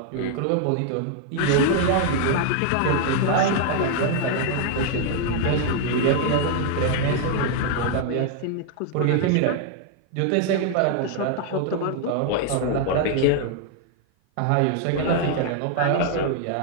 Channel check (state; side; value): different; both; correlation 0.00